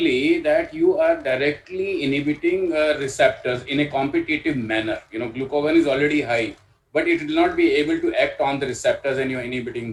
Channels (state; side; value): identical; both; correlation 1.00